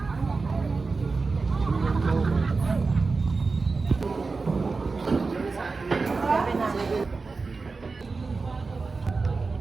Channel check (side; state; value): left; quieter; 4.1 dB